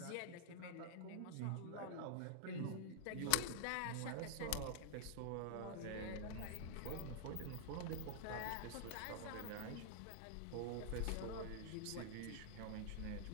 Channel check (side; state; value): both; different; correlation -0.01